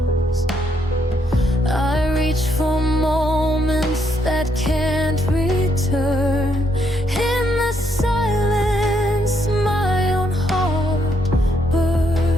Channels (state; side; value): normal; both; correlation 0.74